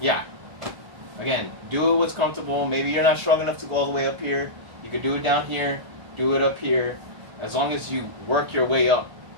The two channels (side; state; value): left; late; 1.3 ms